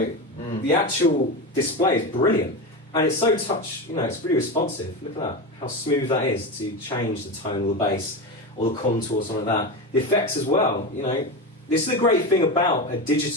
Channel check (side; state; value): both; normal; correlation 0.20